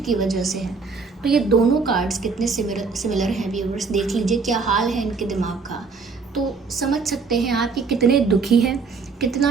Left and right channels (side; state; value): left; quieter; 4.7 dB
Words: की वजह से है। तो ये दोनों कार्ड्स कितने सिमिलर हैं व्यूअर्स, देख लीजिए क्या हाल है इनके दिमाग का। तो समझ सकते हैं आप कि कितने दुखी हैं,